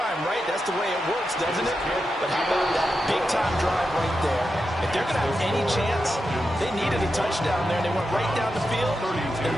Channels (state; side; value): normal; both; correlation 0.88